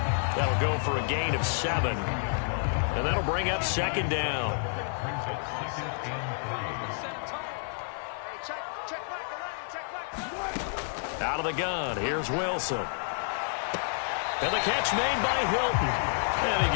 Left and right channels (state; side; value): silent; right; 58 dB below the other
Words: That'll go for a gain of 7. And that'll bring up second down. Out of the gun, here's Wilson. And the catch made by Hilton. And he